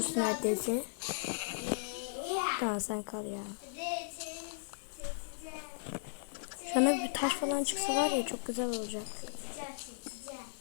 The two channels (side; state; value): right; silent; digital silence